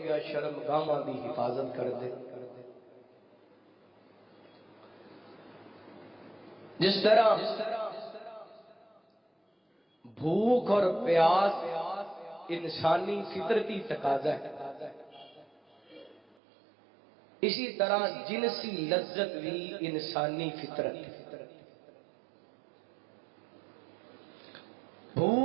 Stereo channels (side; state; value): left; drops out; at 16.2 s